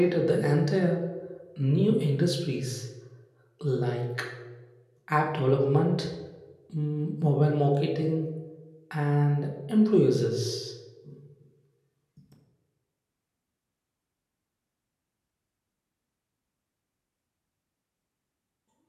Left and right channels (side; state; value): both; identical; correlation 1.00